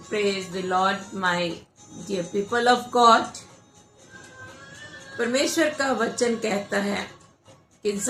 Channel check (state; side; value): identical; both; correlation 1.00